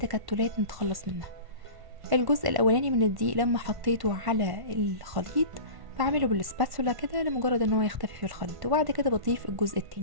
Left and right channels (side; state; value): left; late; 1.5 ms